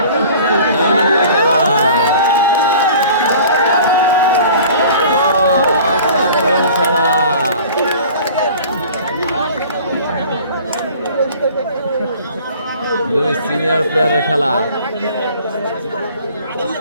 খেলা অসাধারণ খেলা। দুই সিনিয়র প্লেয়ারের খেলা।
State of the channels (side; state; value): both; inverted; correlation -0.46